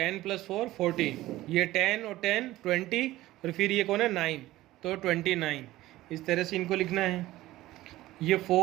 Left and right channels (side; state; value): left; quieter; 16.5 dB